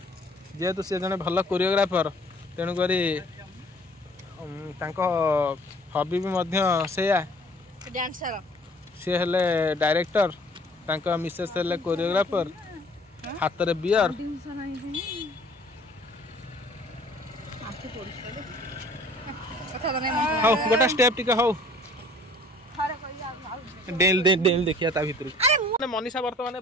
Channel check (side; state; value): both; normal; correlation 0.53